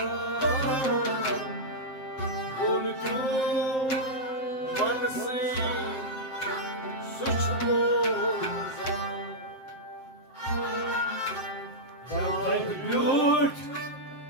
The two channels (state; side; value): late; right; 7.6 ms